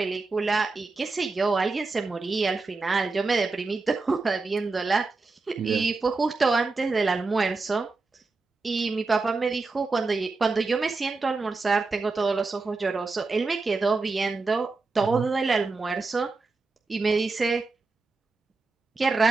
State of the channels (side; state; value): left; quieter; 3.9 dB